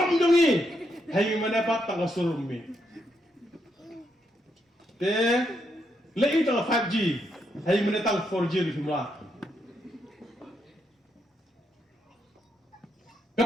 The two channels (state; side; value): normal; both; correlation 0.79